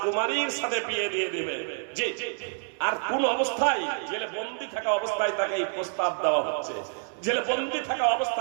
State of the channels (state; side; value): silent; left; 57 dB below the other